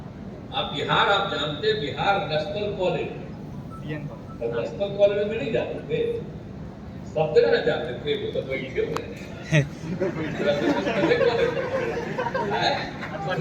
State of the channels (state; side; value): identical; both; correlation 1.00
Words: आप जानते Bihar national college, national college में नहीं जाते थे, सब जगह न जाते थे, वो तो बैठे हुए हैं।